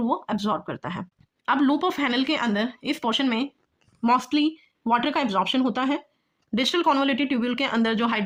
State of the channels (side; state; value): both; identical; correlation 1.00